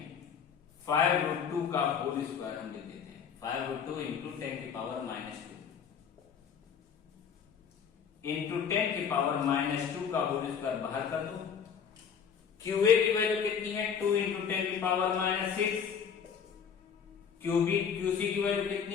5/2 का होल स्क्वायर हम लिख देते हैं, 5/2 इंटू 10 की पावर माइनस 2 इंटू 10 की पावर माइनस 2 का होल स्क्वायर बाहर कर दो। क्यू ए की वैल्यू कितनी है, 2 इंटू 10 की पावर माइनस 6, क्यू सी की वैल्यू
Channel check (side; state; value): right; quieter; 7.2 dB